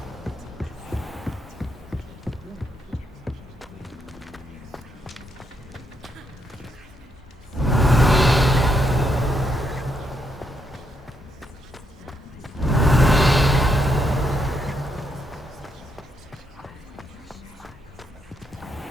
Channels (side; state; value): both; normal; correlation 0.78